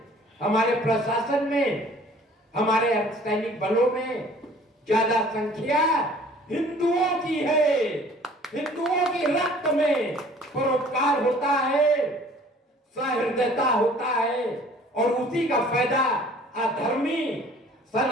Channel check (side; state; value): both; normal; correlation 0.52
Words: हमारे प्रशासन में, हमारे अर्धसैनिक बलों में ज्यादा संख्या हिंदुओं की है। हिंदुओं की रक्त में परोपकार होता है, सहृदयता होता है, और उसी का फायदा अधर्मी